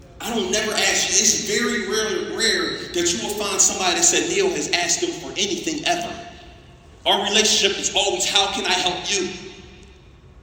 I don't never ask you. It's very rare that you will find somebody that said Neil has asked them for anything ever. Our relationship is always, how can I help you?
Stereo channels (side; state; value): both; identical; correlation 1.00